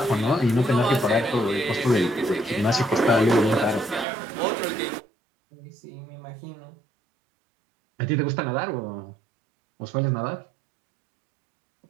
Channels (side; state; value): left; drops out; at 4.0 s